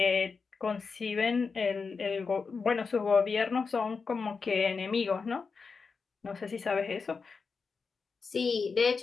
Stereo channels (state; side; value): quieter; right; 4.9 dB